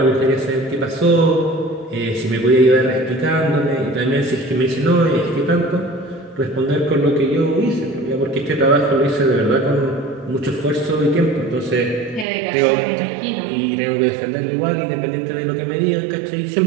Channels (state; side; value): drops out; left; at 12.2 s